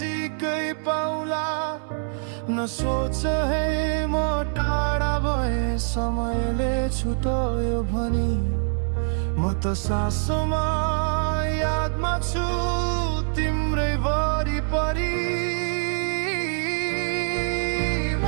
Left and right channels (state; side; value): silent; left; 58 dB below the other